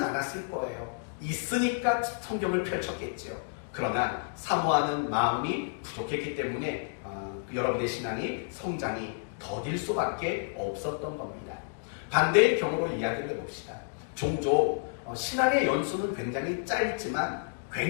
않았을 거예요. 있으니까 성경을 펼쳤겠죠. 그러나 사모하는 마음이 부족했기 때문에 여러분의 신앙이 성장이 더딜 수밖에 없었던 겁니다. 반대의 경우로 이야기를 해봅시다. 종종 신앙의 연수는 굉장히 짧지만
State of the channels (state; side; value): silent; right; digital silence